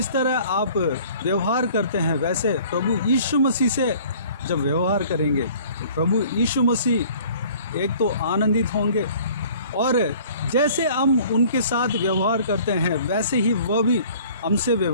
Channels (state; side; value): inverted; both; correlation -0.51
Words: तरह आप व्यवहार करते हैं, वैसे प्रभु यीशु मसीह से जब व्यवहार करेंगे तो प्रभु यीशु मसीह एक तो आनंदित होंगे, और जैसे हम उनके साथ व्यवहार करते हैं वैसे ही वह भी हमसे